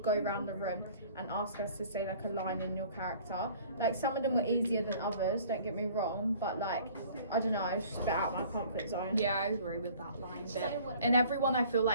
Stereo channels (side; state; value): both; inverted; correlation -0.51